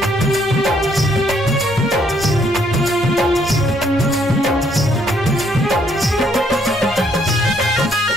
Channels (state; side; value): normal; both; correlation 0.69